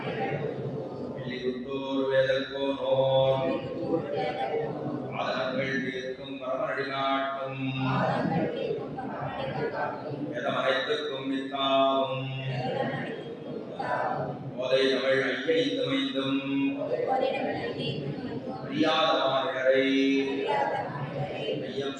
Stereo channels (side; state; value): both; identical; correlation 1.00